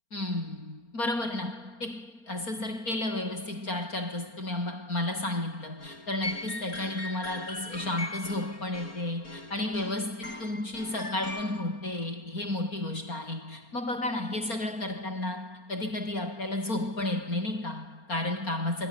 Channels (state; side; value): late; right; 4.3 ms